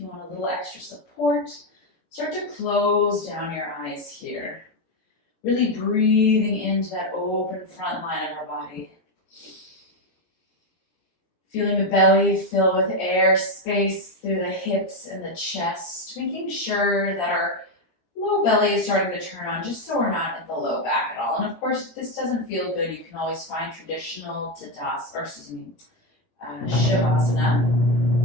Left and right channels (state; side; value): late; right; 18 ms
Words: want a little extra support. Start to close down your eyes here. Really breathing into that open front line of our body. Feeling the belly fill with air, space through the hips and the chest. Making sure that our low belly is starting to turn on, just so we're not in the low back at all. And of course, if this doesn't feel good, you can always find traditional Shavasana.